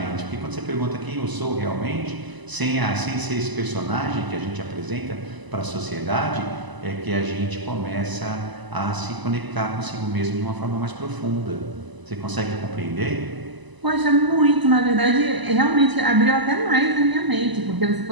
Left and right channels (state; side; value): late; left; 1.0 ms